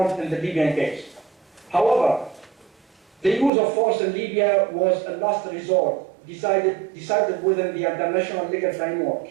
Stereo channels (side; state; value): left; drops out; at 3.5 s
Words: in the Libyan case. However, the use of force in Libya was a last resort, decided within the international legal framework,